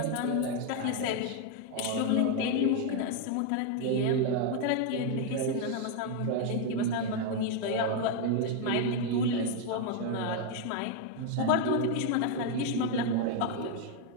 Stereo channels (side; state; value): both; different; correlation 0.01